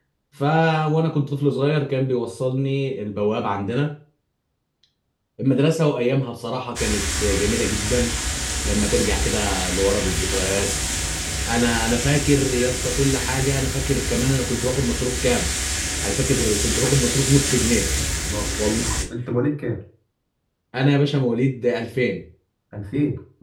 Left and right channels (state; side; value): identical; both; correlation 1.00